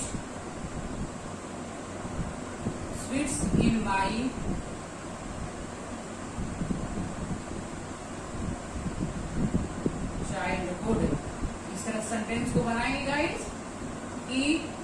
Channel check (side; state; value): both; identical; correlation 1.00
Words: sweets in my childhood. इस तरह सेंटेंस को बनाएंगे गाइस कि